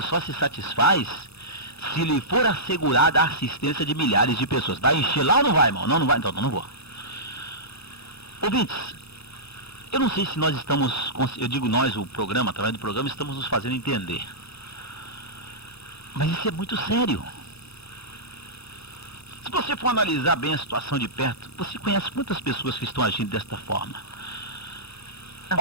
só se satisfaz se lhe for assegurada a assistência de milhares de pessoas. Vai encher lá ou não vai, irmão? Não vai, então não vou. Ouvintes, eu não sei se nós estamos, eu digo nós, o programa, através do programa, estamos nos fazendo entender. Mas isso é muito sério. Se você for analisar bem a situação de perto, você conhece muitas pessoas que estão agindo desta forma.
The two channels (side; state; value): right; late; 0.79 ms